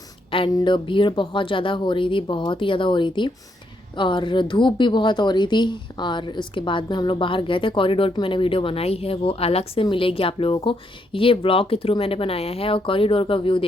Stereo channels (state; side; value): normal; both; correlation 0.76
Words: एंड भीड़ बहुत ज़्यादा हो रही थी, बहुत ही ज़्यादा हो रही थी और धूप भी बहुत हो रही थी। और उसके बाद में हम लोग बाहर गए थे। कॉरिडोर की मैंने वीडियो बनाई है, वो अलग से मिलेगी आप लोगों को। ये ब्लॉग के थ्रू मैंने बनाया है और कॉरिडोर का व्यू